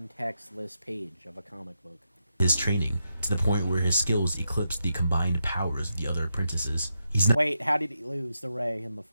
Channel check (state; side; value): inverted; both; correlation -0.85